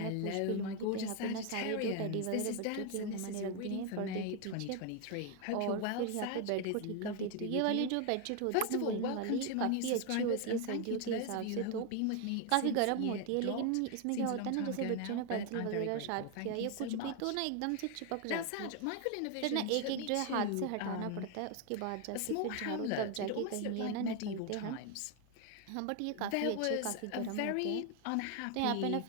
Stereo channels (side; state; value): both; different; correlation 0.01